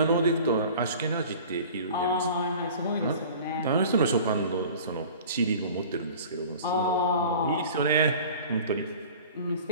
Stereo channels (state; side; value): inverted; both; correlation -0.43